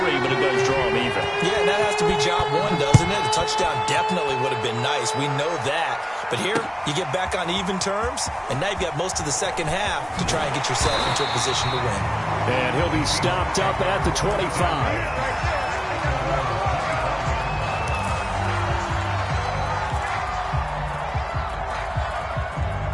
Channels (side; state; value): both; identical; correlation 1.00